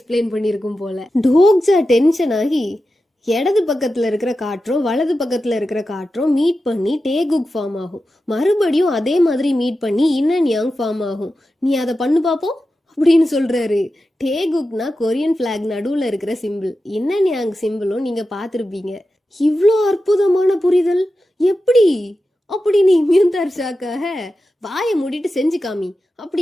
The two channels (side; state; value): both; normal; correlation 0.92